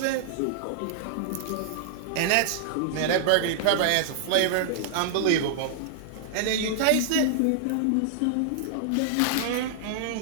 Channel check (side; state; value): both; different; correlation -0.01